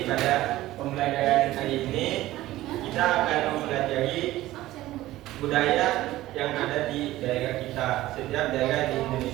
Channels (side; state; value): left; quieter; 16.0 dB